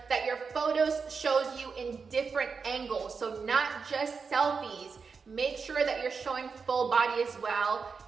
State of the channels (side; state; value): left; quieter; 5.3 dB